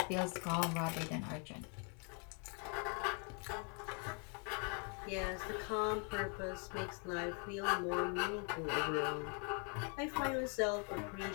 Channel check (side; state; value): right; quieter; 38.2 dB